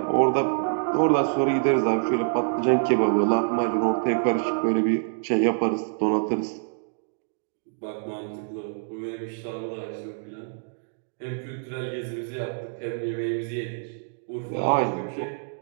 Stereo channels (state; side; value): silent; left; digital silence